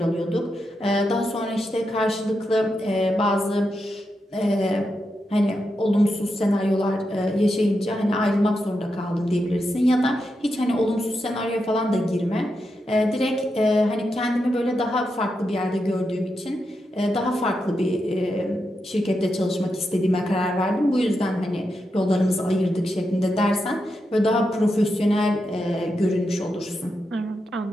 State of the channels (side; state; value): both; normal; correlation 0.86